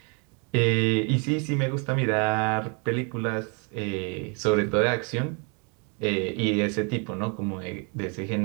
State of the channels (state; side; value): quieter; left; 35.5 dB